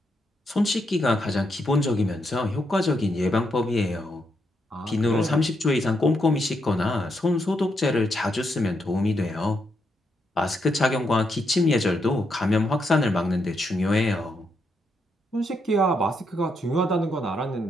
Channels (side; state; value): both; normal; correlation 0.80